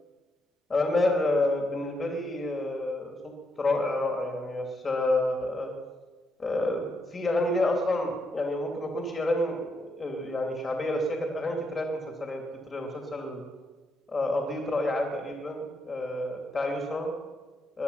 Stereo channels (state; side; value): normal; both; correlation 0.80